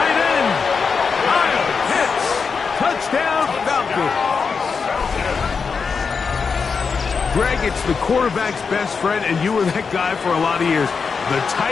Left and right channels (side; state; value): right; quieter; 5.4 dB